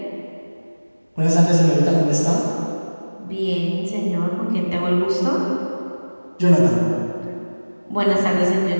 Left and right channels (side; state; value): both; inverted; correlation -1.00